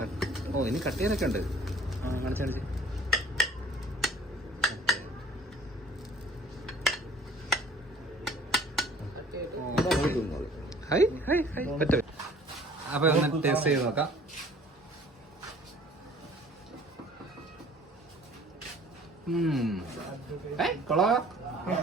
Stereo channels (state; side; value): normal; both; correlation 0.52